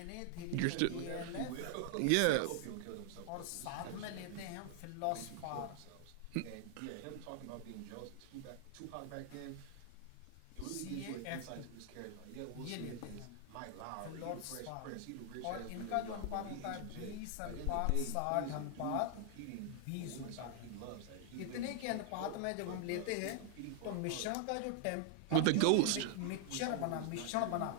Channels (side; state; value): both; different; correlation 0.00